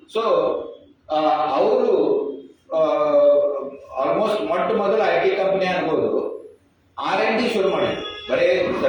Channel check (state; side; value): identical; both; correlation 1.00